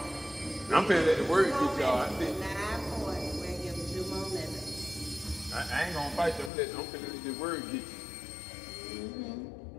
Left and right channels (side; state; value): right; drops out; at 6.5 s